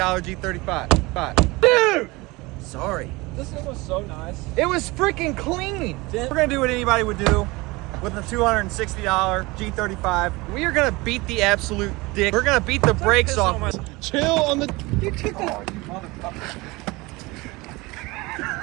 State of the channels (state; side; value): quieter; left; 23.0 dB